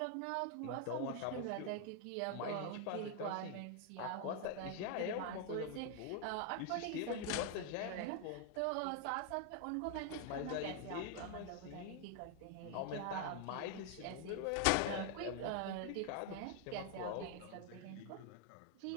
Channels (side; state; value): both; different; correlation 0.00